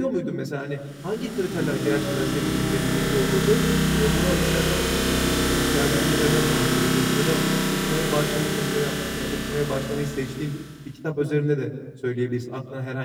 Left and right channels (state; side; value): identical; both; correlation 1.00